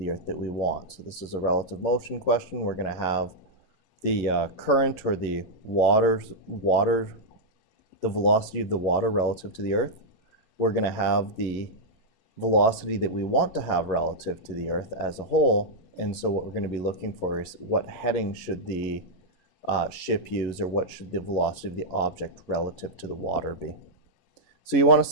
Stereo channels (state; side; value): late; right; 11 ms